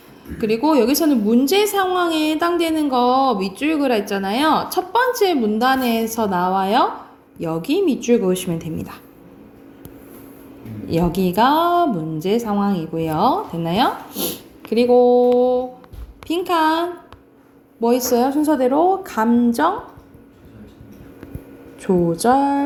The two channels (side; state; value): both; identical; correlation 1.00